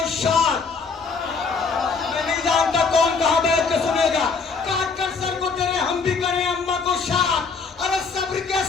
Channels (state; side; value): quieter; right; 4.9 dB